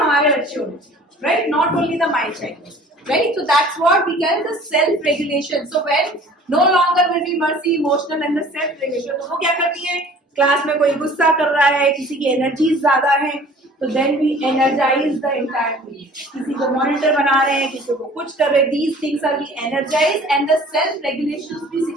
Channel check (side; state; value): both; normal; correlation 0.48